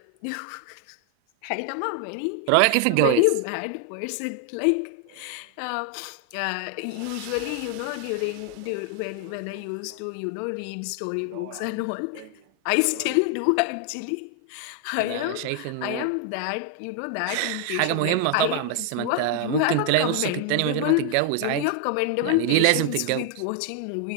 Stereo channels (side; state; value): both; different; correlation 0.00